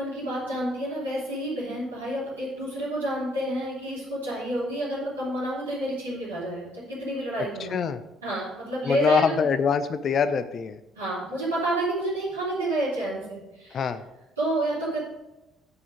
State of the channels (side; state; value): both; normal; correlation 0.64